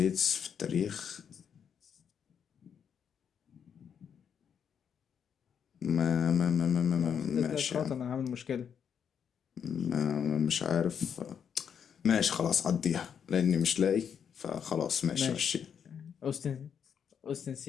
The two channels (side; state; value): right; quieter; 7.7 dB